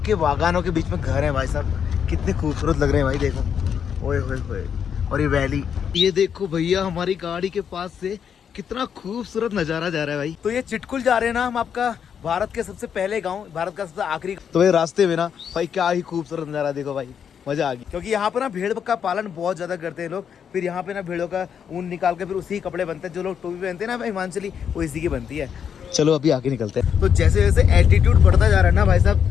के बागानों के बीच में घर है भाई साहब, कितने खूबसूरत लग रहे हैं भाई, देखो ओए होए होए। और ये वैली, ये देखो भैया हमारी गाड़ी के पास से कितना खूबसूरत नजारा जा रहा है भाई। तो ये चिटकुल जा रहे हैं ना हम, आपका भारत के सबसे पहले गाँव, भारत का सबसे आखिरी। तो भाई रास्ते में ना भाई क्या ही खूबसूरत नजारा, देखो भाई मजा आ गई। क्योंकि यहाँ पे ना भेड़ का पालन बहुत ज्यादा करते हैं लोग। फिर यहाँ पे ना भेड़ों का ऊन निकाल के फिर उसी कपड़े बनते हैं। जो लोग टोपी पहनते हैं ना हिमाचली, वो इसी की बनती है। चलो अभी आगे निकलते हैं। तो जैसे जैसे एल्टीट्यूड बढ़ता जा रहा है ना भाई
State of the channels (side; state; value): right; quieter; 7.8 dB